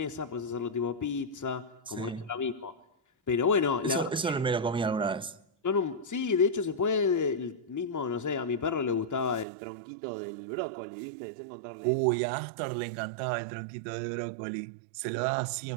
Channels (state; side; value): drops out; left; at 9.5 s